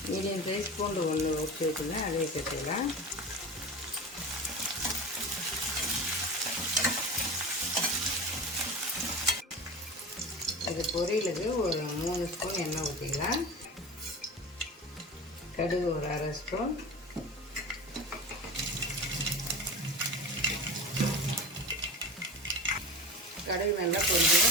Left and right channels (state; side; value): normal; both; correlation 0.30